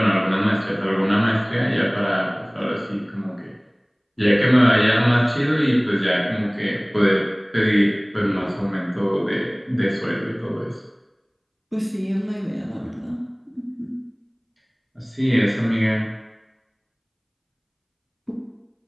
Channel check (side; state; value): both; identical; correlation 1.00